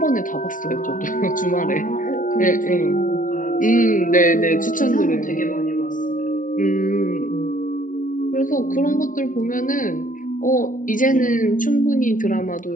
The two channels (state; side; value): late; right; 0.39 ms